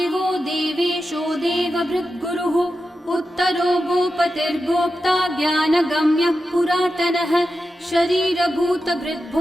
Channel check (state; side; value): normal; both; correlation 0.91